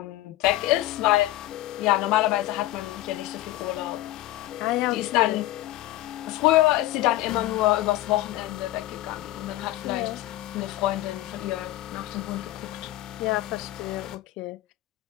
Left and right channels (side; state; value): right; quieter; 15.9 dB